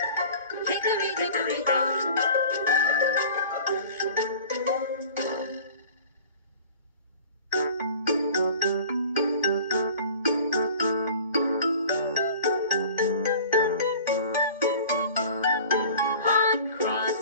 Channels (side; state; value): both; inverted; correlation -0.44